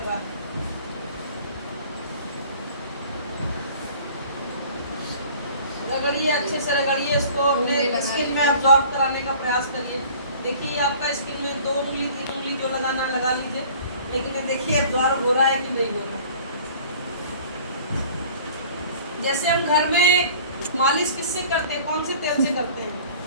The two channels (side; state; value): both; inverted; correlation -0.48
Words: है। रगड़िए, अच्छे से रगड़िए इसको, अपने स्किन में एब्जॉर्ब कराने का प्रयास करिए। देखिए आपका स्किन में 2 उंगली 3 उंगली जो लगाना लगा लीजिए, लेकिन ये देखिए एब्जॉर्ब हो रहा है कि नहीं हो रहा है। जैसे हम घर में मालिश किससे करते हैं, कौन से तेल से करते हैं?